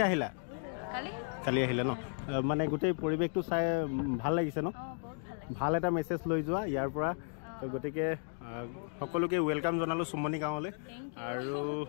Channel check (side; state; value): right; silent; 55 dB below the other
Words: আহিলা? কালি আহিলে ন? মানে গোটেই পৰিৱেশটো চাই ভাল লাগিছে ন? বহুত ভাল লাগিছে। ভাল এটা মেছেজ লৈ যোৱা ইয়াৰ পৰা। গতিকে সকলোকে ৱেলকাম জনালোঁ চুমনি গাঁৱলৈ। আৰু